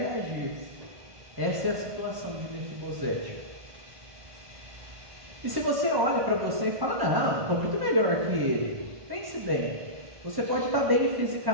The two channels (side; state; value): left; late; 1.1 ms